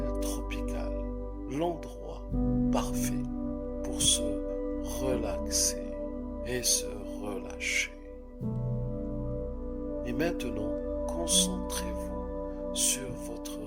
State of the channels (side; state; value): both; identical; correlation 1.00